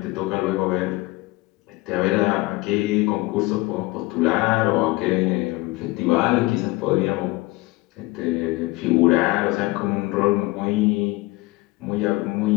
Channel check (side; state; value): right; quieter; 21.8 dB